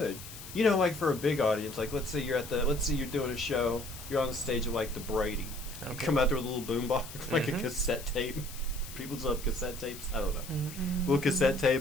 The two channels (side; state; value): left; noise; hiss, 13 dB below the sound